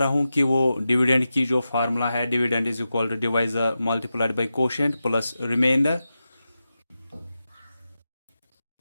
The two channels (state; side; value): inverted; both; correlation -0.91